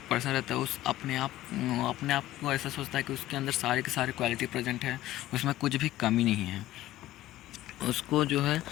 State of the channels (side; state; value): right; quieter; 15.0 dB